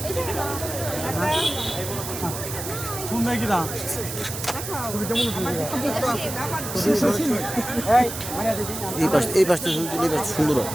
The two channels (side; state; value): right; noise; hiss, 7 dB below the sound